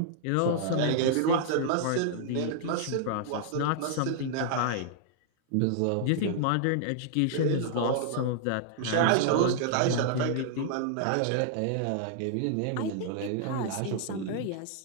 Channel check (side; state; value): both; different; correlation -0.01